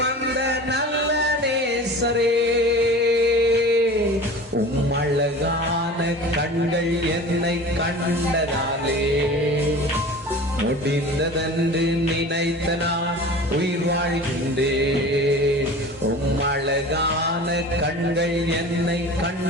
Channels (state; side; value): normal; both; correlation 0.38